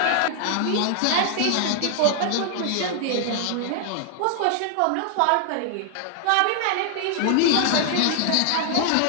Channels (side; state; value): both; different; correlation 0.00